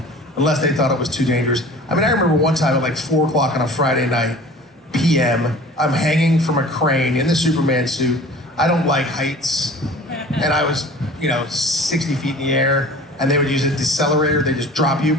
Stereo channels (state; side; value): normal; both; correlation 0.43